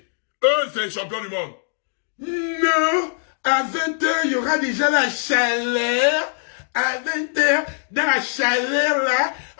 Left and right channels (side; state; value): right; silent; 61 dB below the other